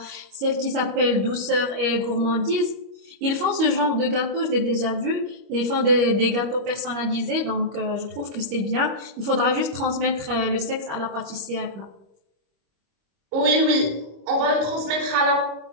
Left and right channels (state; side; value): late; left; 25 ms